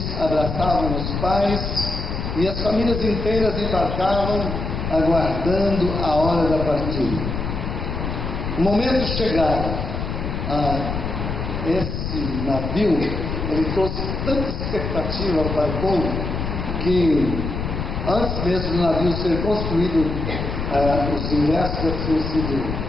abraçavam os pais, e as famílias inteiras embarcavam, aguardando a hora da partida. O momento chegado, esse navio, ele trouxe tanta expectativa para o povo, que antes mesmo do navio ser construído, os ingressos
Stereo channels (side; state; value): left; noise; rumble, 3 dB below the sound